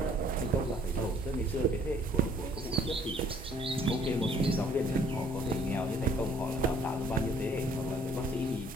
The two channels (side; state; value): both; normal; correlation 0.60